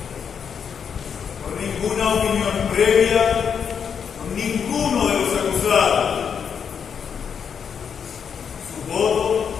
por ninguna opinión previa, por ninguno de los acusados. Su voto,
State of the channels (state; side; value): quieter; right; 7.1 dB